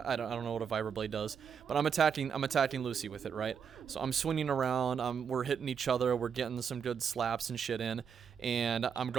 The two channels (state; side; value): quieter; left; 7.1 dB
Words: I don't know what a vibroblade does, but I'm attacking Lucy with it, right? So I'm swinging around. We're hitting each other. We're getting some good slaps and shit in, and I'm